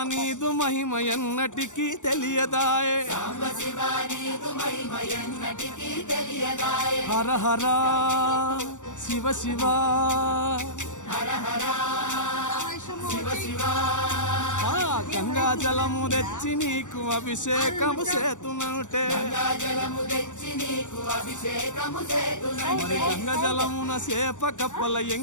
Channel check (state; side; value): late; right; 0.85 ms